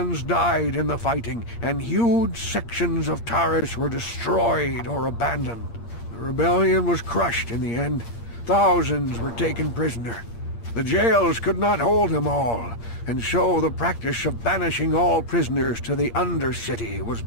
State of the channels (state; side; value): late; right; 8.6 ms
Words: died in the fighting, and huge sections of Taris were destroyed or abandoned. The rebellion was crushed in the end. Thousands were taken prisoner. The jails could not hold them all, and so the practice of banishing all prisoners to the Undercity was